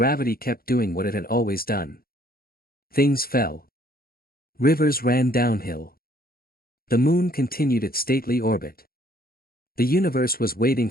kept doing what it had always done. Things fell. Rivers ran downhill. The moon continued its stately orbit. The universe was waiting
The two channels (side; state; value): right; late; 0.43 ms